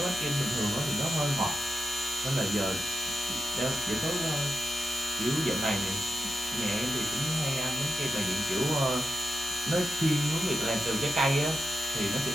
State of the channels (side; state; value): both; normal; correlation 0.86